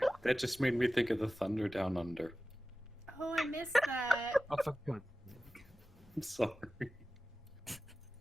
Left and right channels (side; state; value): both; normal; correlation 0.95